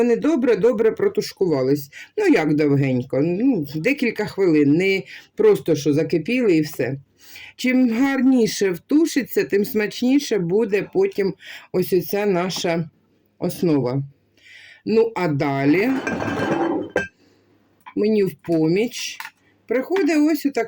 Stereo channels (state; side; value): identical; both; correlation 1.00